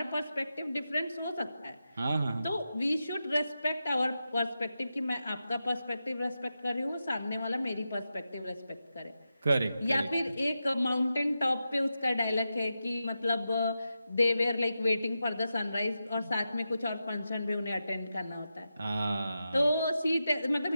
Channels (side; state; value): both; inverted; correlation -0.90